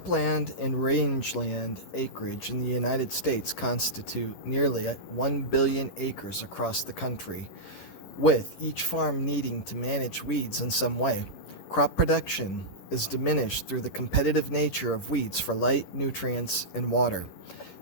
and rangeland acreage in the United States constitute nearly 1 billion acres across the country, with each farm needing to manage weeds in some way. Crop production is diminished through the competitive nature of weeds for light, nutrients, and water.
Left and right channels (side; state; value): right; late; 10 ms